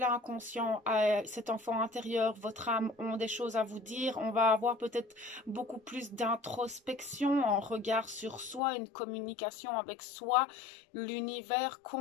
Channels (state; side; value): drops out; right; at 8.6 s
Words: cet enfant intérieur, votre âme ont des choses à vous dire. On va avoir peut-être beaucoup plus d'introspection, en regard sur soi, une communication avec soi, l'univers